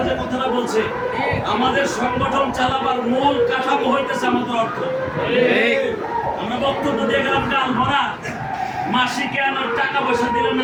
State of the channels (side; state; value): both; identical; correlation 1.00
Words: যে কথাটা বলছে, আমাদের সংগঠন চালাবার মূল কাঠামো হইতেছে আমাদের অর্থ। আমরা বক্তব্য দিয়ে গেলাম গাল ভরা, মাসিকে আমার টাকা পয়সা দিলেন